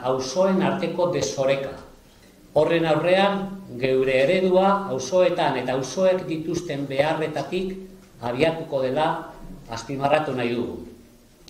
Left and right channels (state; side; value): identical; both; correlation 1.00